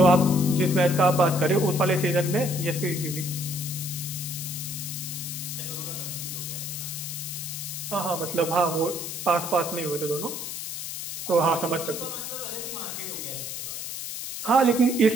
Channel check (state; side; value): noise; left; hiss, 6 dB below the sound